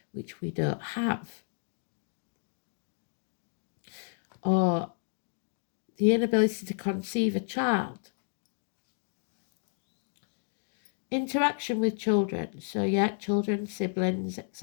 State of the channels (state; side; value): silent; right; digital silence